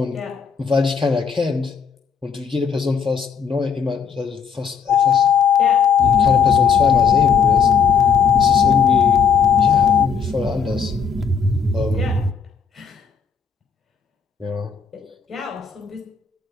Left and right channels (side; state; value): right; quieter; 6.5 dB